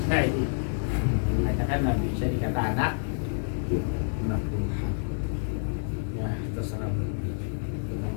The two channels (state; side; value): silent; right; digital silence